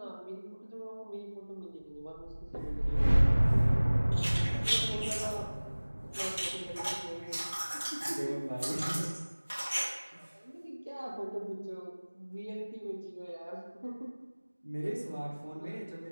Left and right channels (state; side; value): inverted; both; correlation -1.00